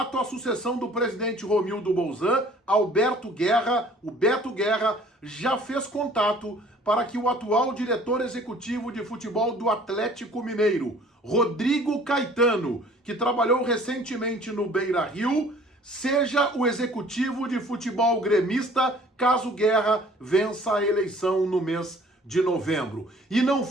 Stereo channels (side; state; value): both; normal; correlation 0.53